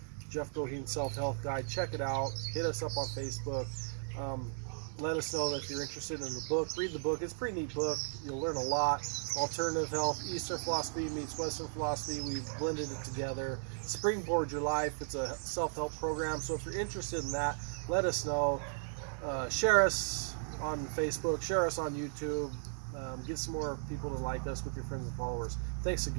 Jeff Goheen Self-Health Guide. Check it out. Hit us up on Facebook. Let us know that if you're interested in the book. Read the book. It's a pretty neat book. You'll learn a lot. Alternative health, Eastern philosophy meets Western philosophy. We've blended it together. Springboard Your Life. It's a self-help program. So if you're interested in that, let us know. Share us on Facebook. Share us on YouTube. Get some more people to like us with your friends and followers. Thanks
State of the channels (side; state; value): left; silent; digital silence